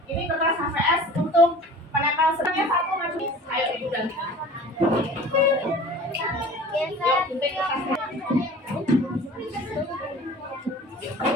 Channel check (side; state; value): both; normal; correlation 0.43